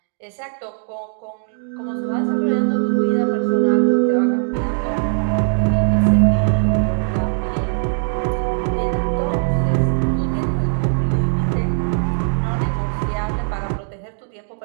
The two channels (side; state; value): left; silent; digital silence